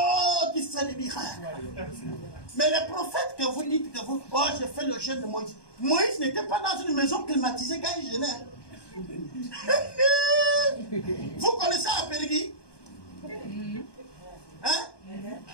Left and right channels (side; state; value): right; late; 1.2 ms